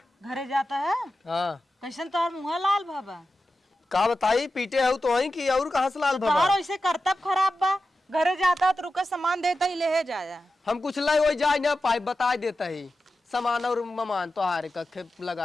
घरे जाता है? हाँ कैसन तोहर मुँह लाल बाबा? का बताई, पीटे हो तो वहीं की और कहाँ से लाल तोहर बाबा। वैसे करतब खराब बा। घरे जाता तो रुका सामान देता ही ले जाया। हम कुछ लाई वही जाए ना पाई, बता देता ही सामान और ममान तो हारे का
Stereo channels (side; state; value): both; normal; correlation 0.92